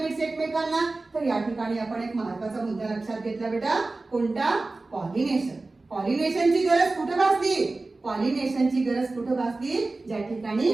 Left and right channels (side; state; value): left; quieter; 3.3 dB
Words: एकमेकांना? तर या ठिकाणी आपण एक महत्त्वाचा मुद्दा लक्षात घेतला बेटा. कोणता? पॉलिनेशन. पॉलिनेशनची गरज कुठे भासली? पॉलिनेशनची गरज कुठे भासली? ज्या ठिकाणी